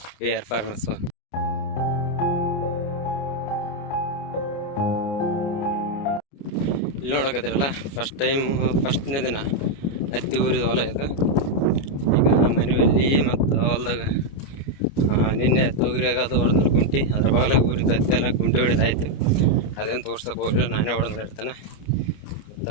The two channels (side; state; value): right; late; 29 ms